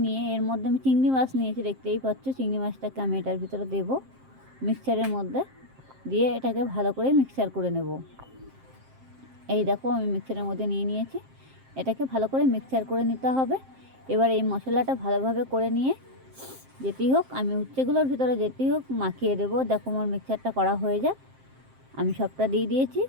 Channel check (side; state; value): left; late; 7.6 ms